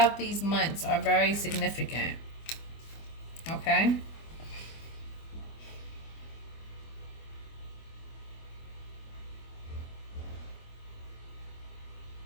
these months are very significant. Okay.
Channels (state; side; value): late; right; 25 ms